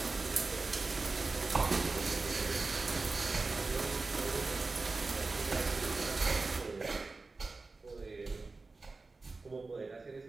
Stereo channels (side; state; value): left; quieter; 3.7 dB